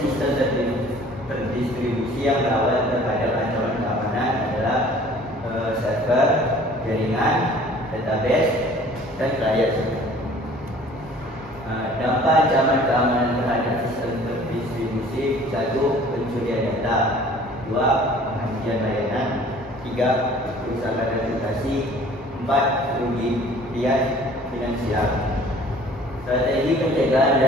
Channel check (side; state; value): both; normal; correlation 0.51